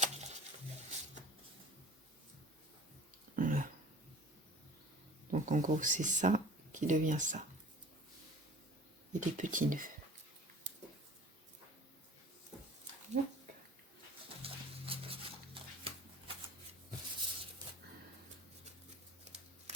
Voilà. Donc en gros c'est ça qui devient ça. Et des petits nœuds.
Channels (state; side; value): normal; both; correlation 0.43